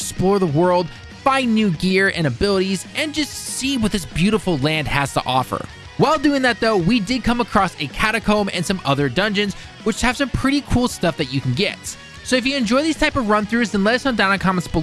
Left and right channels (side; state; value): both; identical; correlation 1.00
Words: the world, find new gear and abilities, and just see what this beautiful land has to offer. While doing that though, we did come across a catacomb and some other dungeons, which have some pretty cool stuff that you can get. So if you enjoy these type of run-throughs, then let us know down in the comments